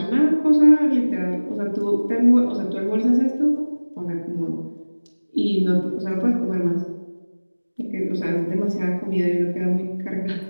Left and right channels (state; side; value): inverted; both; correlation -1.00